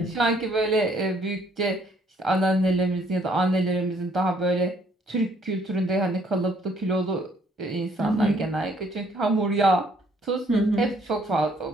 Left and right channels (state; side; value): normal; both; correlation 0.65